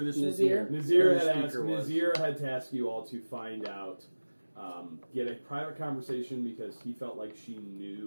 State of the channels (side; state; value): both; inverted; correlation -1.00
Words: Nazir. Nazir Who the had speaker was. Nazir had tasked you all to find out, get a private conversation because he felt like she